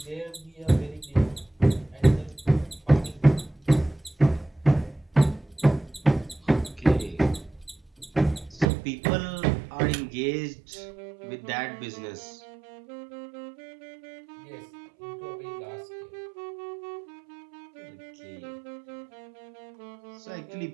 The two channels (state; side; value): drops out; left; at 8.7 s